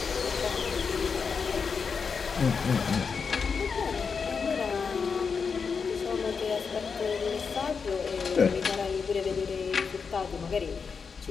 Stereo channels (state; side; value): quieter; right; 5.6 dB